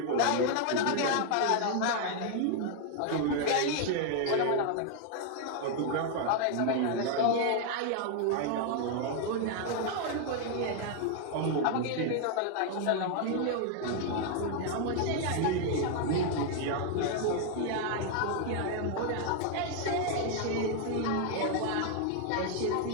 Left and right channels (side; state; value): both; different; correlation 0.00